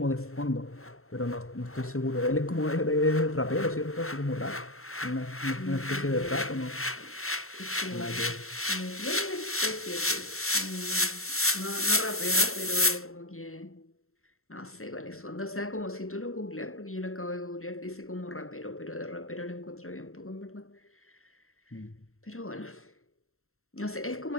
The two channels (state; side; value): late; right; 0.62 ms